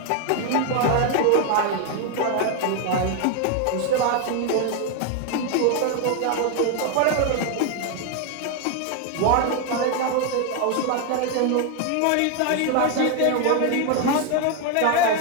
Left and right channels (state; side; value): different; both; correlation 0.01